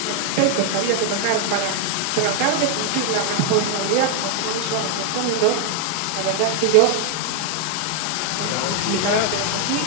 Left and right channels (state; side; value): different; both; correlation 0.00